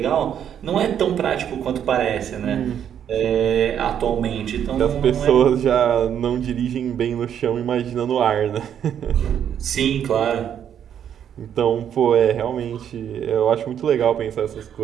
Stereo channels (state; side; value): quieter; left; 9.2 dB